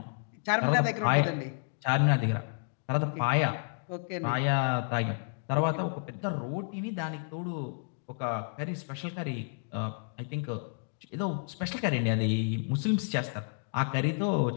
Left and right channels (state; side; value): silent; right; digital silence